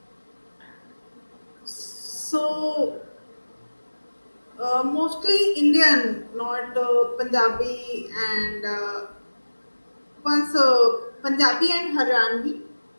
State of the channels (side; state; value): both; inverted; correlation -1.00